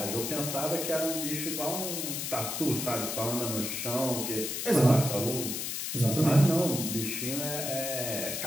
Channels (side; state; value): left; noise; hiss, 3 dB below the sound